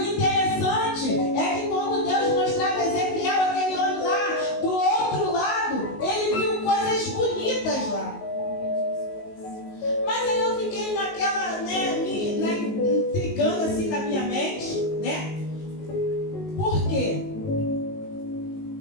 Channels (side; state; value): right; late; 19 ms